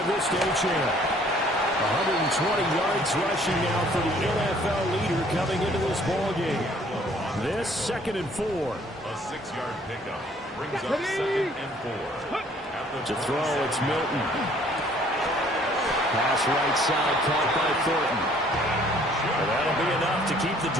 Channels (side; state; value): both; normal; correlation 0.59